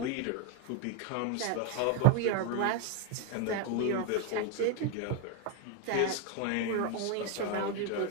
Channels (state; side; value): different; both; correlation 0.02